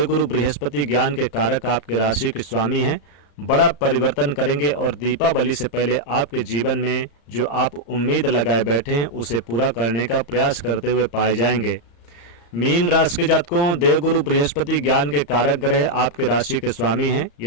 बृहस्पति ज्ञान के कारक आपके राशि के स्वामी हैं, बड़ा परिवर्तन करेंगे और दीपावली से पहले आपके जीवन में जो आप उम्मीद लगाए बैठे हैं उसे पूरा करने का प्रयास करते हुए पाए जाएंगे। मीन राशि के जातकों, देवगुरु बृहस्पति ज्ञान के कारक ग्रह आपके राशि के स्वामी हैं।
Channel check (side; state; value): right; late; 35 ms